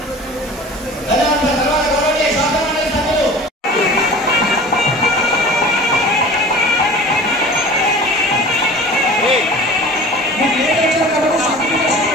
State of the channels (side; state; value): both; normal; correlation 0.40